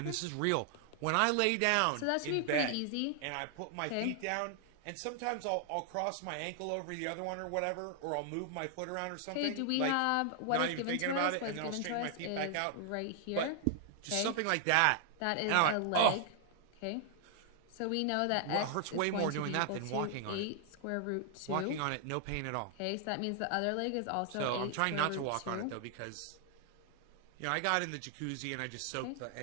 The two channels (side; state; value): both; different; correlation 0.00